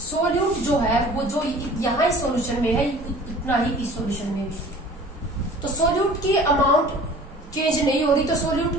सॉल्यूट जो है वो जो यहाँ इस सॉल्यूशन में है इतना ही इस सॉल्यूशन में भी। तो सॉल्यूट की अमाउंट चेंज नहीं हो रही, तो सॉल्यूट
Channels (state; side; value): normal; both; correlation 0.46